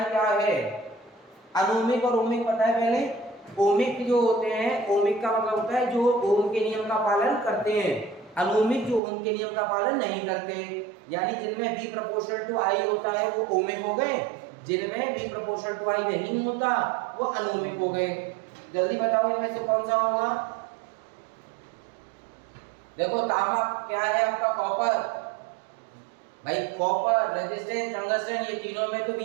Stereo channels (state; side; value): drops out; left; at 9.0 s